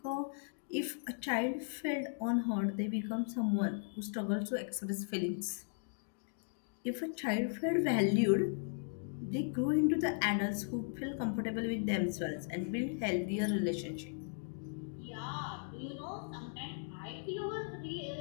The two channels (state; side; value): silent; right; digital silence